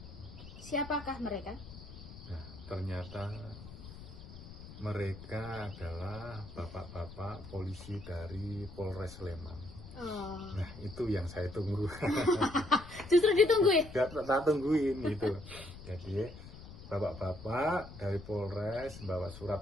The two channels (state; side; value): noise; left; rumble, 15 dB below the sound